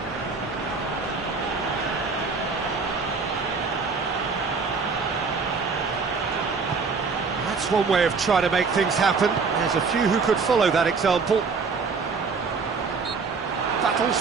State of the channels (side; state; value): left; quieter; 4.8 dB